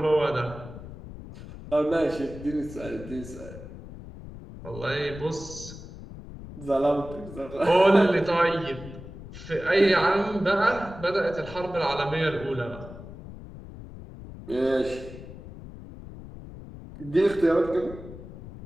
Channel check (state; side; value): noise; left; rumble, 14 dB below the sound